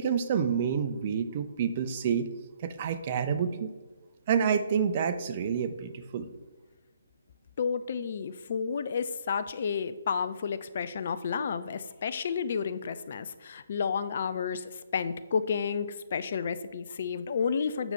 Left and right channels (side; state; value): both; inverted; correlation -0.62